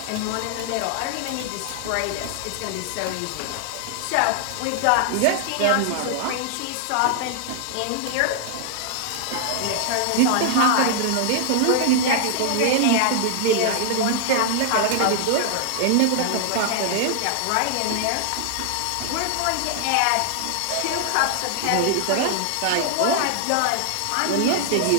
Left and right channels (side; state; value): both; different; correlation 0.00